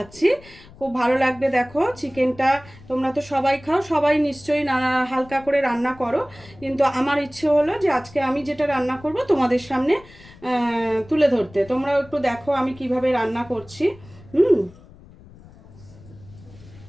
খুব ভালো লাগবে। দেখো, চিকেনটা তোমরা তো সবাই খাও, সবাই নিশ্চয়ই হালকা করে রান্না করো, কিন্তু আমার ইচ্ছে হলো যে আজকে আমি যেটা রান্না করব তোমাদের সামনে তুলে ধরতে। তোমরাও একটু দেখো আমি কিভাবে রান্না করছি।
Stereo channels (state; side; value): noise; left; rumble, 22 dB below the sound